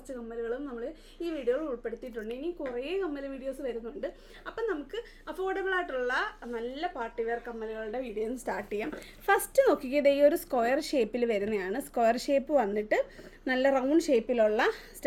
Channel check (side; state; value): both; identical; correlation 1.00